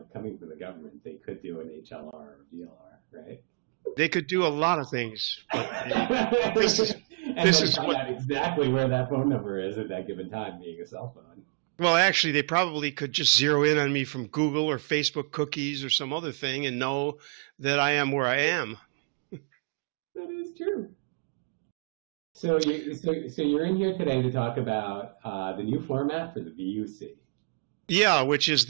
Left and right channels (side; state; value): left; quieter; 37.3 dB